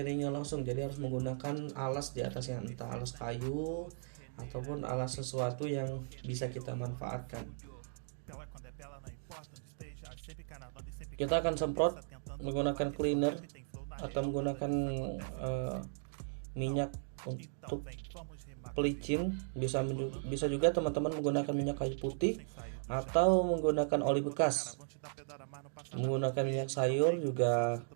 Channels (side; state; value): left; silent; digital silence